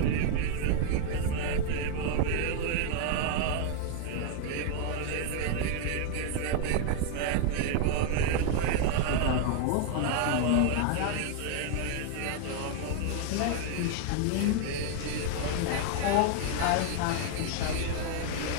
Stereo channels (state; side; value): different; both; correlation 0.00